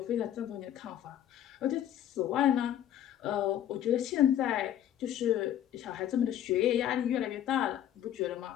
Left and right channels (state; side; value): quieter; right; 11.0 dB